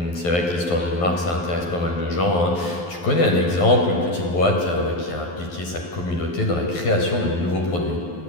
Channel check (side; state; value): right; late; 12 ms